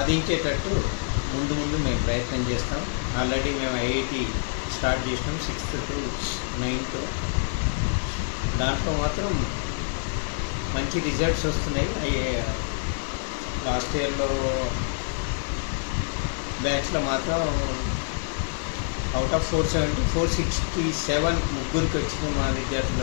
ముందు మేము ప్రయత్నం చేస్తాం. ఆల్రెడీ మేము ఐఐటి స్టార్ట్ చేసినాం 6th to 9th. దాంట్లో మాత్రం మంచి రిజల్ట్స్ వస్తున్నాయి. లాస్ట్ ఇయర్లో బ్యాచ్లో మాత్రం అవుట్ ఆఫ్ 470 467 ముగ్గురికి వచ్చింది మా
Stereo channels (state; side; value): silent; right; digital silence